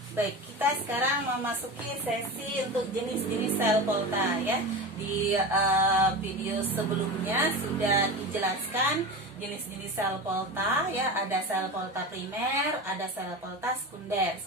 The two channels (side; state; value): both; normal; correlation 0.27